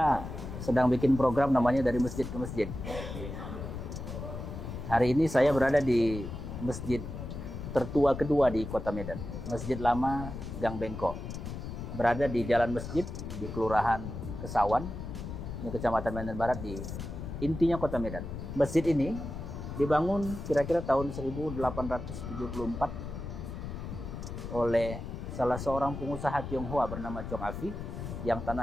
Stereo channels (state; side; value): noise; left; rumble, 7 dB below the sound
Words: sedang bikin program namanya Dari Masjid ke Masjid. Hari ini saya berada di masjid tertua kedua di Kota Medan, Masjid Lama Gang Bengkok. Berada di Jalan Masjid di Kelurahan Kesawan, ini Kecamatan Medan Barat, di intinya Kota Medan. Masjid ini dibangun kira-kira tahun 1874 oleh salah seorang pengusaha Tionghoa bernama Chong Afi, yang